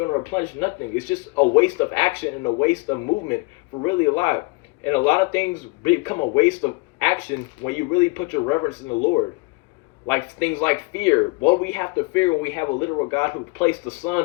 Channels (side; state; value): right; quieter; 26.0 dB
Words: to replenish nothing. It's just a waste of action and a waste of movement for really a lot. And a lot of things become a waste of action when you really put your reverence in the Lord. Like things like fear. What do we have to fear when we have a literal God who placed the